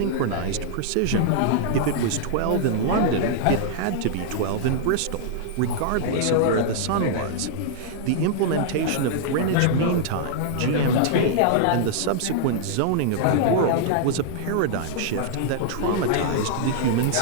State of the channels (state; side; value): different; both; correlation -0.01